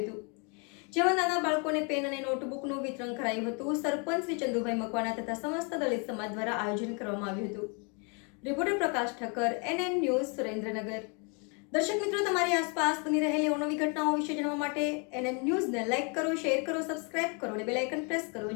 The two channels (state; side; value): quieter; right; 34.8 dB